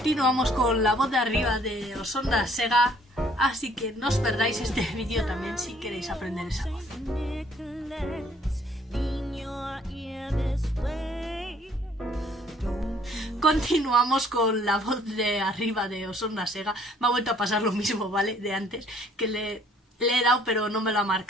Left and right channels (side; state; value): both; normal; correlation 0.60